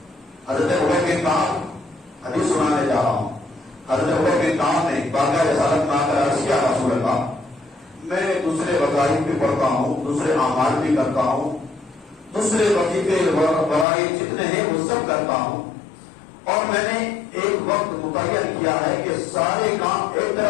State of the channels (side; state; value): right; drops out; at 13.9 s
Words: حضرت عمر بن کعب حدیث سنانے جا رہا ہوں. حضرت عمر بن کعب نے بارگاہ رسالت میں آ کر عرض کیا رسول اللہ میں دوسرے وظائف بھی پڑھتا ہوں، دوسرے اعمال بھی کرتا ہوں، دوسرے وظیفے فرائض جتنے ہیں وہ سب کرتا ہوں، اور میں نے ایک وقت متعین کیا ہے کہ سارے کام ایک